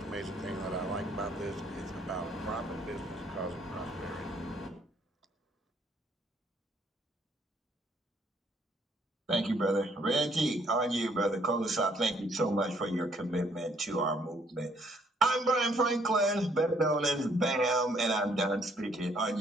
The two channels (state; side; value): normal; both; correlation 0.66